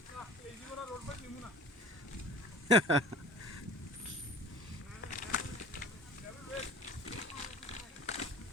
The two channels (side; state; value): both; normal; correlation 0.42